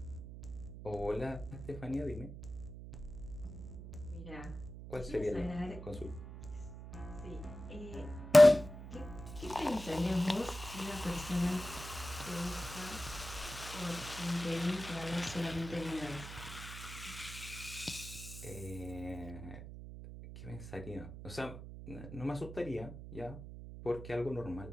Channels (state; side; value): noise; right; hum, 11 dB below the sound